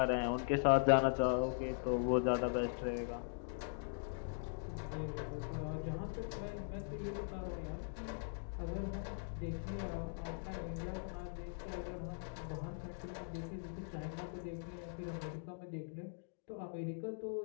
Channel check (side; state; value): right; silent; digital silence